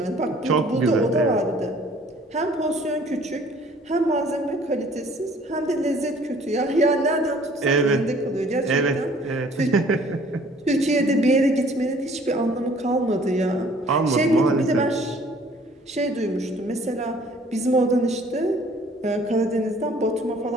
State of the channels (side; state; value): both; normal; correlation 0.55